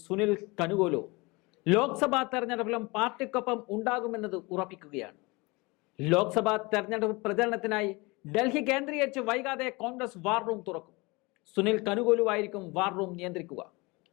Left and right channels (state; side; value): quieter; right; 25.1 dB